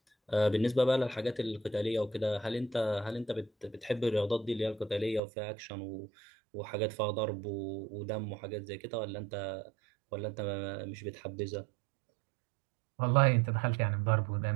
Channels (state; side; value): drops out; left; at 5.2 s